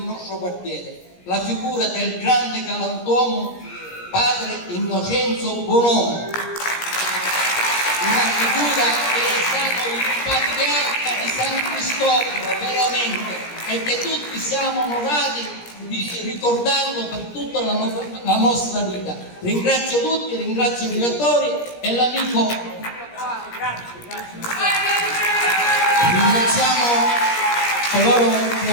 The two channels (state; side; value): late; right; 17 ms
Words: quartiere, la figura del grande galantuomo padre Innocenzo Bonomo, una figura che è stato il patriarca di San Cristoforo veramente, e che tutti siamo onorati di ricordarlo per tutta la nostra vita. Ringrazio tutti, ringrazio i direttori e l'amico. Ringraziamo coloro che